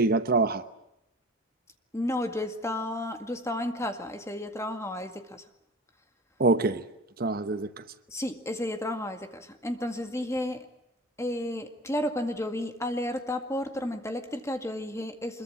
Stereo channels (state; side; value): normal; both; correlation 0.40